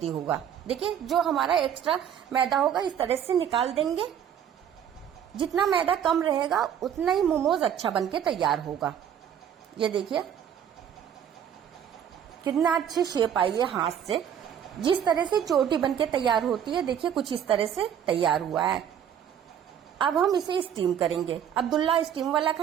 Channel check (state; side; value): quieter; left; 9.2 dB